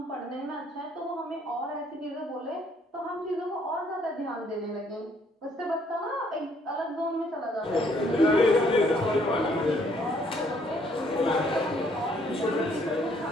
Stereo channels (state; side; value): normal; both; correlation 0.65